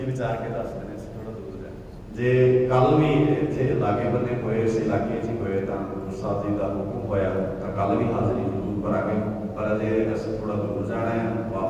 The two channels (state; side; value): identical; both; correlation 1.00